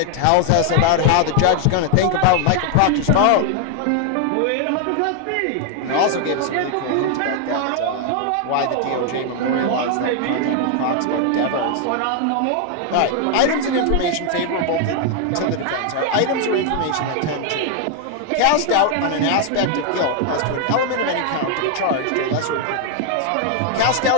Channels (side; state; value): both; different; correlation 0.00